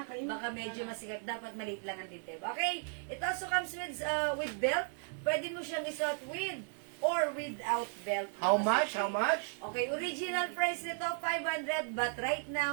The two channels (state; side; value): silent; left; 54 dB below the other